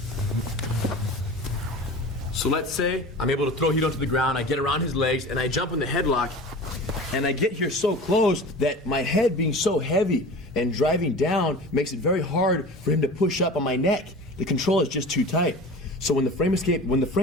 So let's say I'm able to throw Hito to the ground, I get around his legs, and I jump in the headlock, and I get here so close that my head being so heavy and driving down makes it very hard for him to push up on my neck. The control is just too tight. So when the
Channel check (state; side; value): normal; both; correlation 0.36